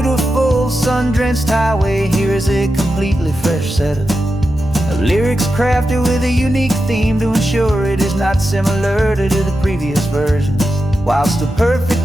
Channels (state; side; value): normal; both; correlation 0.90